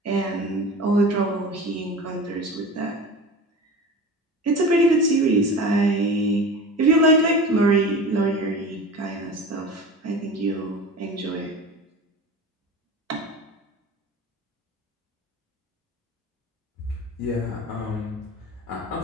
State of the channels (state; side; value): normal; both; correlation 0.33